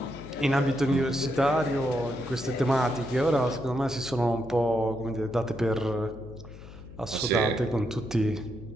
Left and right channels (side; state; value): left; noise; hum, 16 dB below the sound